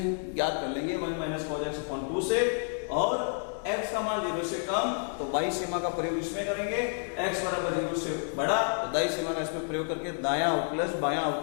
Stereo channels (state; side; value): silent; right; 58 dB below the other